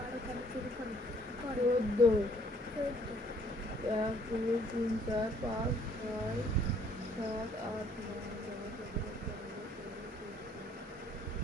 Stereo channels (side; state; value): both; normal; correlation 0.62